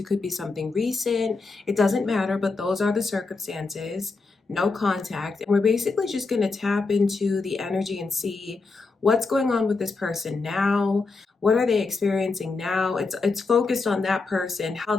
could be something recent. It doesn't matter, but those are the circumstances. No contact. And we're basically just going to tap into the energy and see what's going on with this person now. What are they experiencing now? It's focused on that person, how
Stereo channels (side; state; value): right; quieter; 4.0 dB